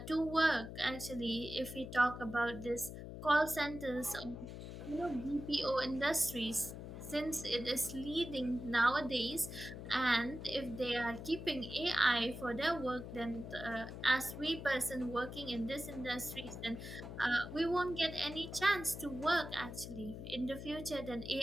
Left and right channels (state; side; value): noise; left; hum, 9 dB below the sound